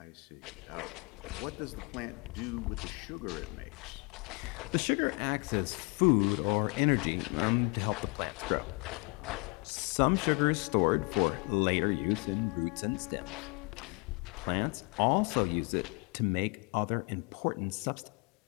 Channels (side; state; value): right; quieter; 31.0 dB